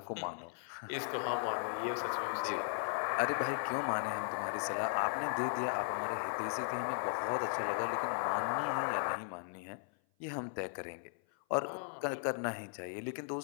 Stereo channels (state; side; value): silent; right; 53 dB below the other